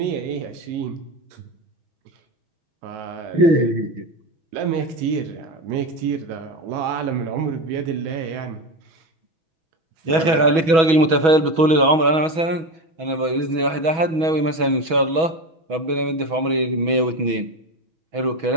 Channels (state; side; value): late; left; 6.2 ms